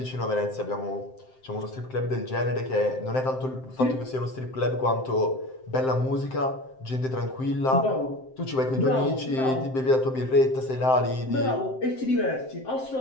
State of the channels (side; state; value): right; late; 7.7 ms